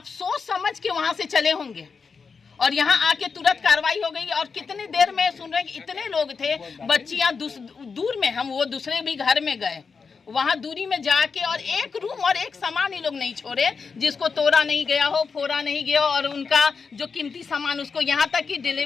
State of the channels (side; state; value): right; quieter; 5.3 dB